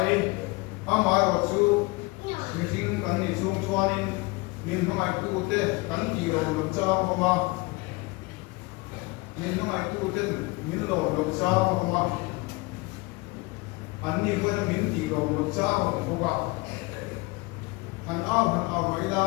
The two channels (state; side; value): quieter; right; 24.9 dB